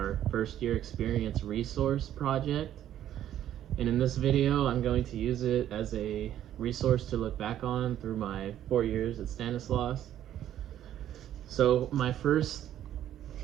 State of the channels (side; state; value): left; quieter; 11.5 dB